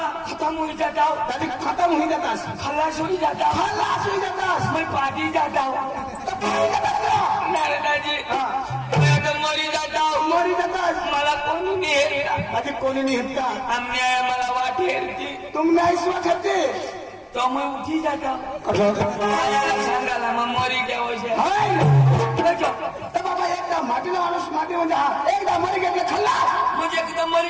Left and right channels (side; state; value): both; identical; correlation 1.00